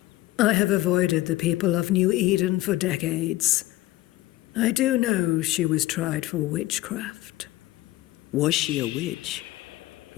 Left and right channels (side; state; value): right; quieter; 17.1 dB